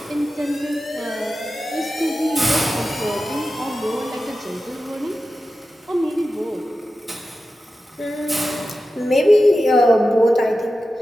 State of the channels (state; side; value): normal; both; correlation 0.92